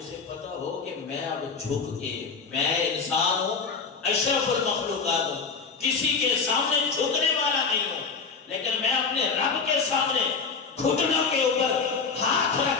پتہ ہو کہ میں اب جھک کے، میں انسان ہوں، اشرف المخلوقات ہوں، کسی کے سامنے جھکنے والا نہیں ہوں، لیکن میں اپنے رب کے سامنے گھٹنوں کے اوپر ہاتھ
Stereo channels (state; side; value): quieter; right; 5.1 dB